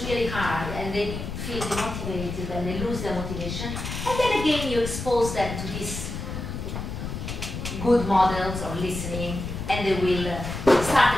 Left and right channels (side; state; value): left; noise; rumble, 6 dB below the sound